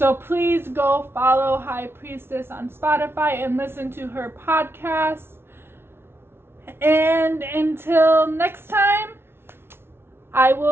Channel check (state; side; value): late; left; 0.12 ms